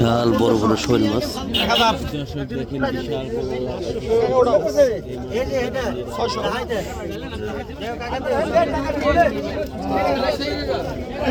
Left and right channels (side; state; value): both; identical; correlation 1.00